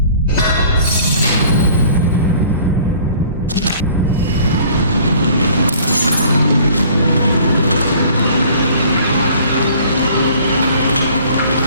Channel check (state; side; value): inverted; both; correlation -0.52